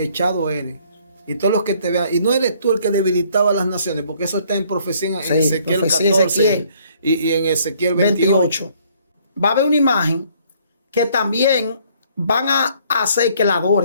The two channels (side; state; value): both; inverted; correlation -0.62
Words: eres. Y todos los que te vean, y no eres tú el que debilitaba a las naciones, porque eso está en profecía en Ezequiel profecía 14 y en Ezequiel 28. Va a haber una imagen que también van a hacer que la